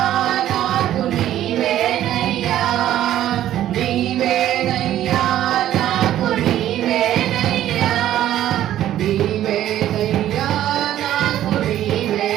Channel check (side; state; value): left; quieter; 12.4 dB